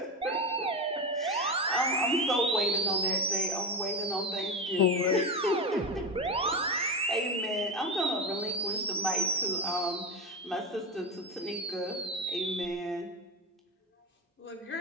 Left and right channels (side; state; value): both; normal; correlation 0.19